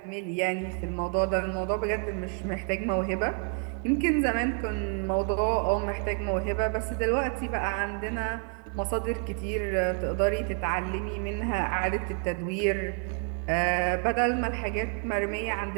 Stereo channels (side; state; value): left; quieter; 38.8 dB